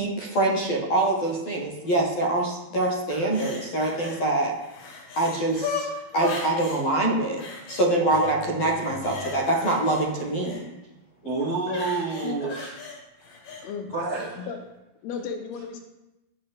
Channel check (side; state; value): right; late; 12 ms